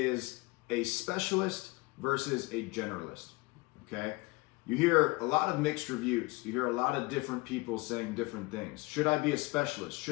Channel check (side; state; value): right; quieter; 24.3 dB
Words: a specialist versus a generalist, okay? You hear a lot of mixed reviews. You hear a lot of different people saying different things. Should I be a specialist?